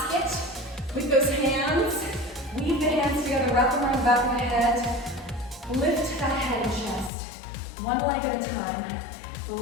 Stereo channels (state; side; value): drops out; right; at 7.1 s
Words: with those hands. Weave the hands together, wrap them around the back of the head. Lift that head and chest. One leg at a time.